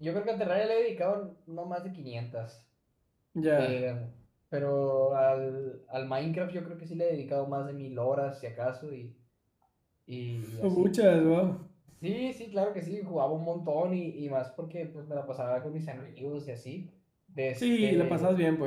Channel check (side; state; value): both; identical; correlation 1.00